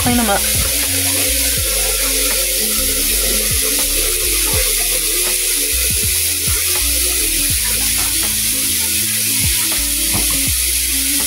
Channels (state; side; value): identical; both; correlation 1.00